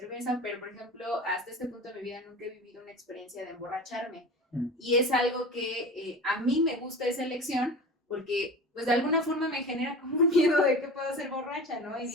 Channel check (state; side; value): normal; both; correlation 0.34